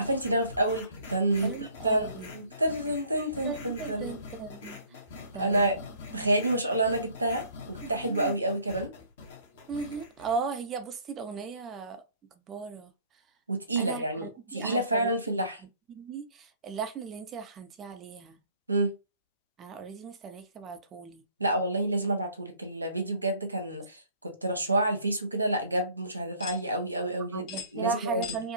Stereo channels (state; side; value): inverted; both; correlation -0.57